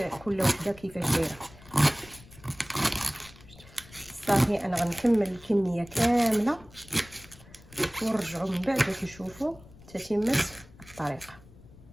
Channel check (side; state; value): left; noise; rumble, 22 dB below the sound